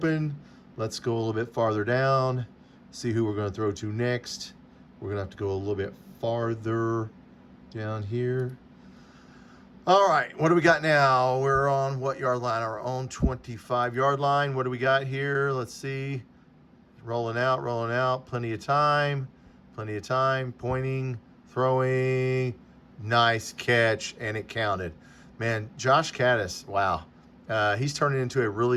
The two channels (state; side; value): identical; both; correlation 1.00